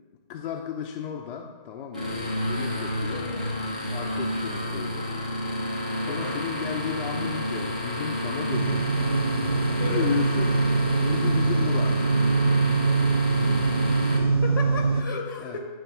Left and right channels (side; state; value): both; inverted; correlation -0.77